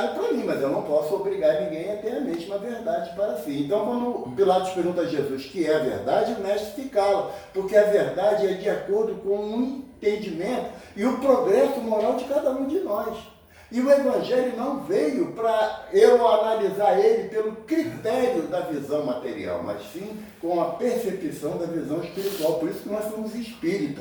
para mim, mas eu não posso obrigar ninguém a ter a mesma verdade para si. Então, quando Pilatos pergunta a Jesus o que é a verdade, o mestre se cala, porque a verdade é de acordo com o entendimento e o progresso moral de cada um de nós. E o Evangelho não veio para eu analisar ele pelo critério da visão material, mas sim com a percepção da visão espiritual. Por isso que nós somos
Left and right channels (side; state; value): both; identical; correlation 1.00